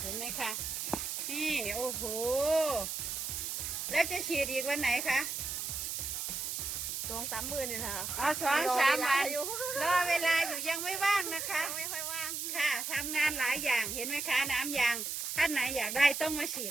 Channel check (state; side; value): noise; right; hiss, 3 dB below the sound